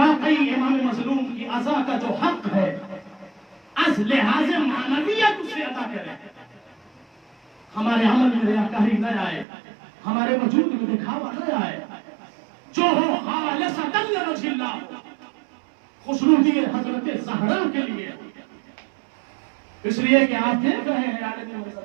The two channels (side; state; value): left; drops out; at 9.5 s